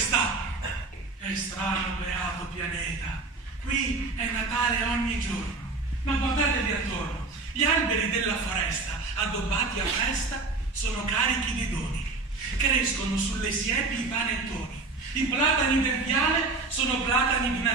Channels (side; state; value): left; quieter; 3.7 dB